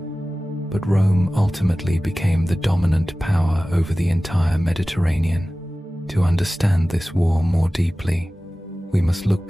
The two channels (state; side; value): normal; both; correlation 0.97